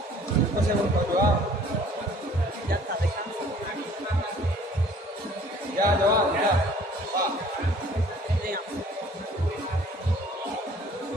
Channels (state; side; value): normal; both; correlation 0.54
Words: 5 segundos, Joao. Ya está, descansa. Ya, Joao, ya. Va. Venga.